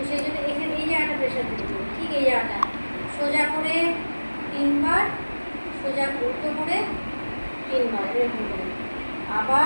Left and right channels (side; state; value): both; inverted; correlation -1.00